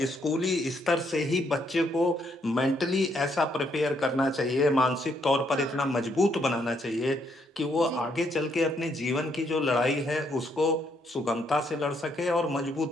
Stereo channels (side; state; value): both; normal; correlation 0.73